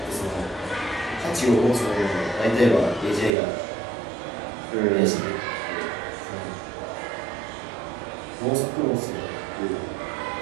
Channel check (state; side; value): drops out; left; at 3.3 s